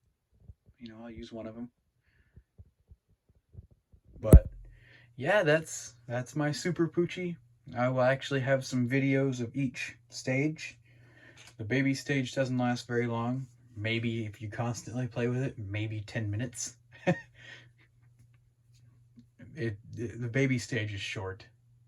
I'll use one of them. But yeah, that's my Super Poo-chi. I will actually have some videos of each stage. The baby stage doesn't last very long. Maybe if you constantly play with it, maybe 10 minutes. The baby stage is short.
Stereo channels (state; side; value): identical; both; correlation 1.00